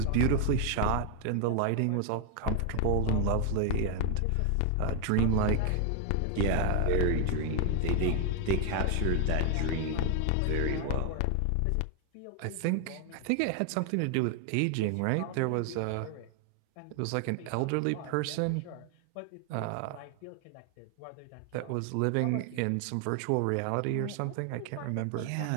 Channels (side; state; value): both; different; correlation 0.00